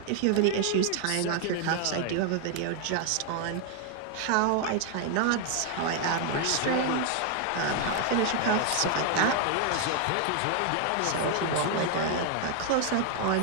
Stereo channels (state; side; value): different; both; correlation 0.00